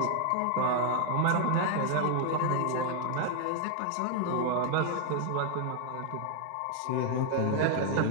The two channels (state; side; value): different; both; correlation 0.00